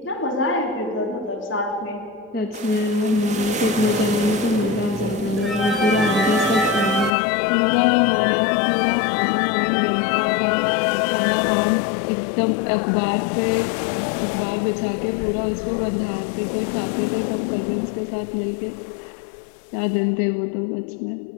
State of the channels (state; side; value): drops out; right; at 7.1 s